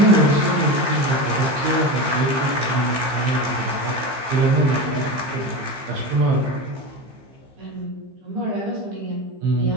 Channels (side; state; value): left; late; 15 ms